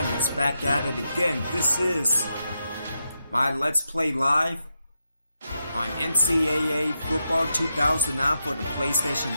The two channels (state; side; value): inverted; both; correlation -0.85